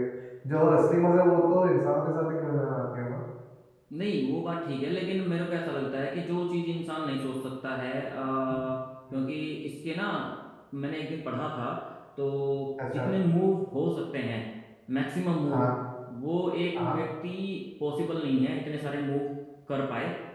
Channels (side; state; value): both; identical; correlation 1.00